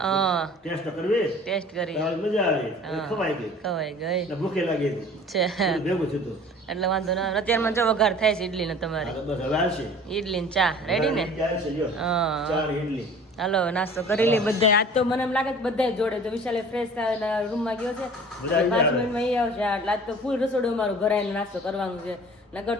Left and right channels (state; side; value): normal; both; correlation 0.45